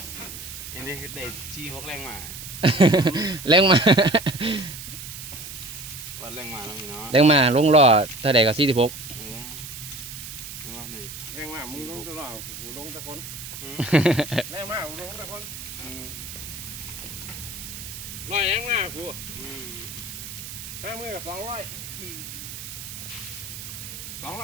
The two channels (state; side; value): noise; right; hiss, 10 dB below the sound